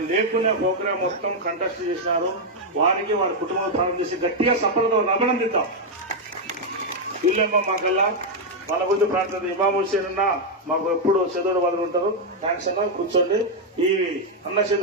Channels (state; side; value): normal; both; correlation 0.00